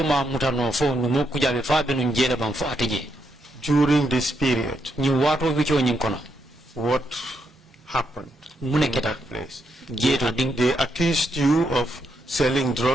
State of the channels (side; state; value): both; normal; correlation 0.80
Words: ma mutano fo Numo Kujabi fa be nun jele bam fo atije. During this period, Nyin wato wicho nyin kono. what happened Mune in keta. that place? Jeto ding They accused you of selling